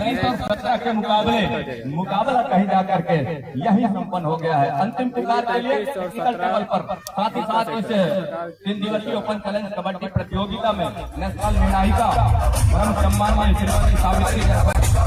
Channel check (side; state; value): both; identical; correlation 1.00